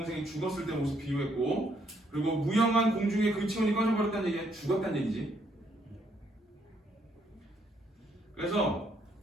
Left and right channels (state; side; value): normal; both; correlation 0.71